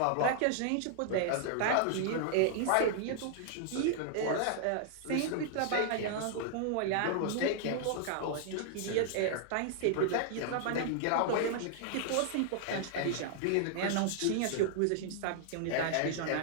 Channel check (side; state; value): both; different; correlation -0.01